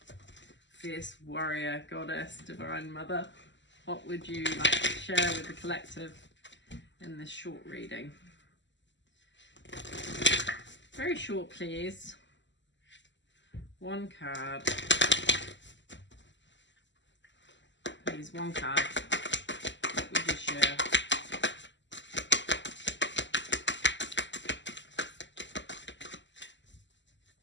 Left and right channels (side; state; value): right; late; 0.53 ms